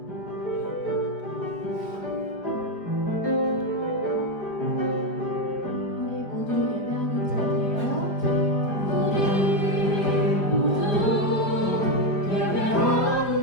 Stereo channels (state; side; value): late; right; 4.9 ms